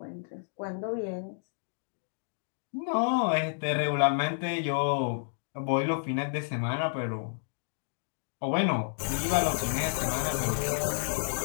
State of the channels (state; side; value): silent; right; digital silence